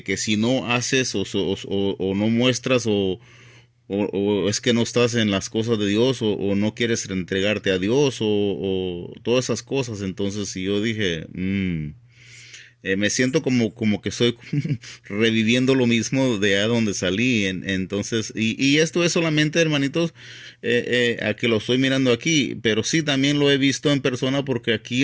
si no haces o no muestras o es que no estás en las cosas de Dios o no quieres entregarte a Dios o todas esas cosas. Entonces si yo dije, me siento como que estoy reviviendo lo mismo de a donde salí. Entonces, y esto es solamente, hermanitos, a que lo estoy mirando aquí, pero sí también lo he visto en persona porque aquí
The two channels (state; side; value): identical; both; correlation 1.00